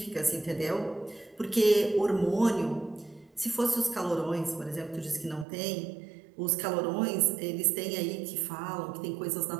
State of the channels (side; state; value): left; drops out; at 5.5 s